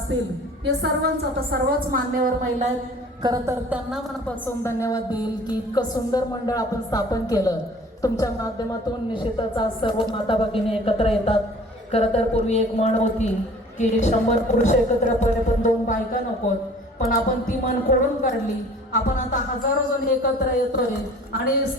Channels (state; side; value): normal; both; correlation 0.48